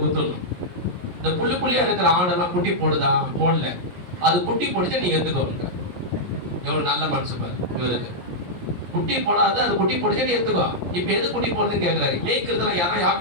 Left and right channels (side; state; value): left; late; 17 ms